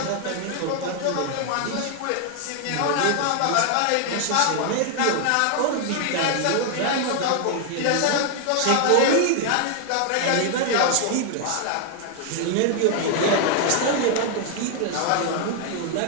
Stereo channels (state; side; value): different; both; correlation 0.00